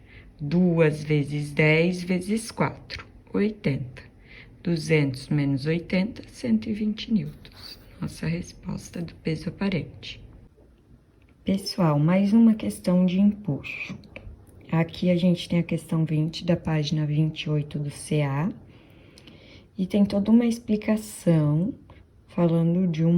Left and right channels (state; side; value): identical; both; correlation 1.00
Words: 2 vezes 10 vezes 4, 80. 200 menos 80, 120 newtons. Nossa resposta do peso aparente. Pessoal, mais uma questão de empuxo. Aqui a gente tem a questão 20 da página 28 do CA. E tem toda uma explicação falando de